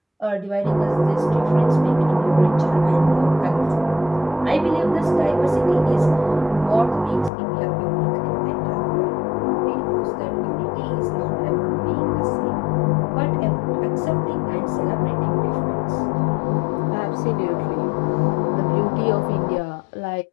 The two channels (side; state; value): right; drops out; at 7.3 s